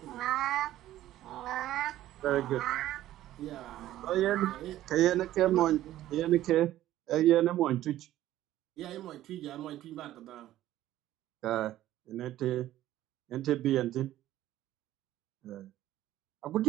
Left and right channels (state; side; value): quieter; left; 13.9 dB